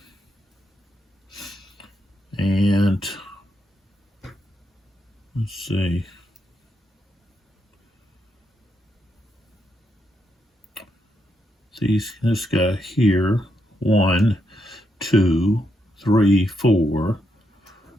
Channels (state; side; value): normal; both; correlation 0.81